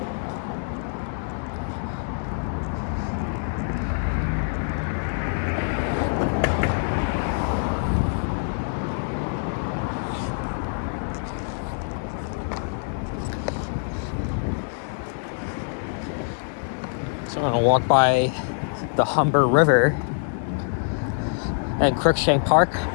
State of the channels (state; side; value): silent; right; 62 dB below the other